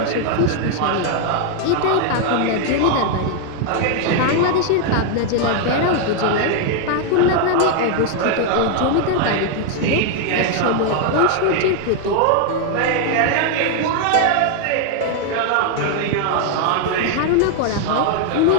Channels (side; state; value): both; different; correlation 0.00